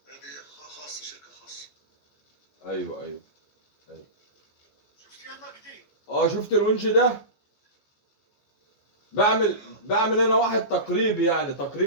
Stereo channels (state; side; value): late; right; 14 ms